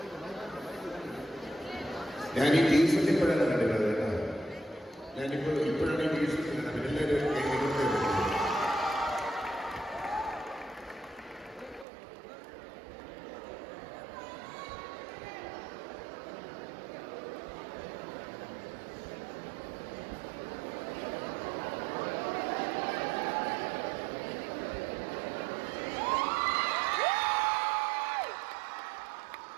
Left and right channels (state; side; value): drops out; left; at 11.9 s